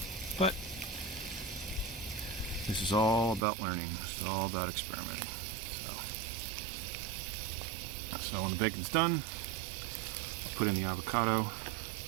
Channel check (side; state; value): left; drops out; at 3.4 s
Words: but This is all about learning. This is all about experimenting. So when the bacon's done, I'll put in the avocado,